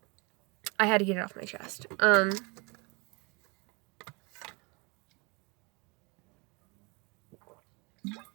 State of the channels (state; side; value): quieter; left; 29.3 dB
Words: I had to get it off my chest. On